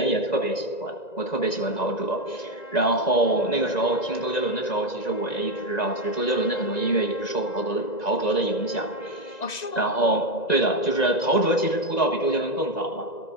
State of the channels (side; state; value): right; late; 1.9 ms